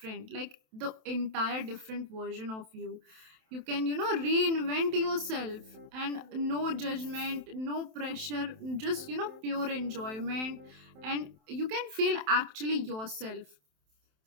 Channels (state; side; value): late; left; 27 ms